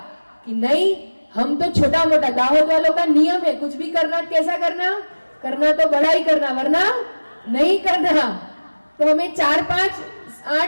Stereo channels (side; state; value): both; inverted; correlation -1.00